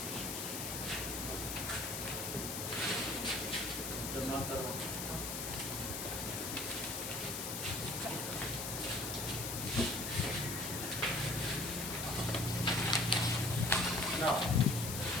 जमा करो। ना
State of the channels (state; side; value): noise; left; hiss, 4 dB below the sound